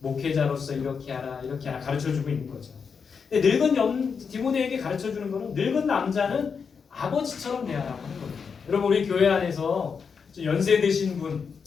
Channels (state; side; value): quieter; right; 5.9 dB